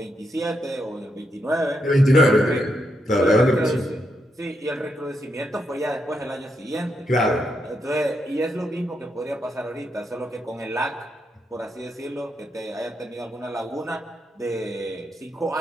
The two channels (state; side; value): normal; both; correlation 0.81